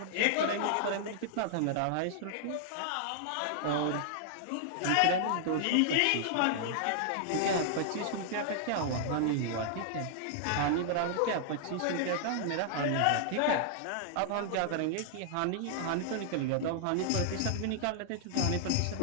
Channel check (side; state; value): both; different; correlation -0.01